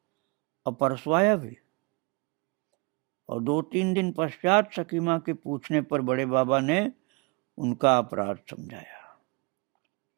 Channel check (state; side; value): quieter; left; 31.2 dB